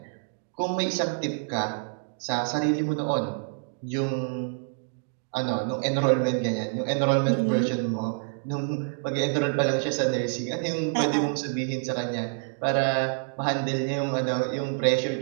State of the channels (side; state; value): left; silent; digital silence